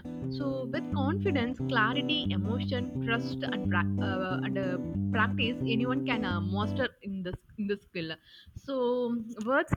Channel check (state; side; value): identical; both; correlation 1.00